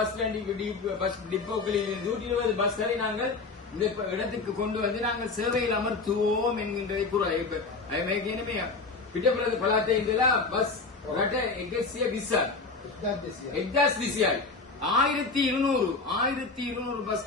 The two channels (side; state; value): right; quieter; 4.0 dB